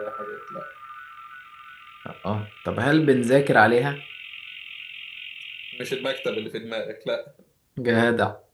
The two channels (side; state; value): both; identical; correlation 1.00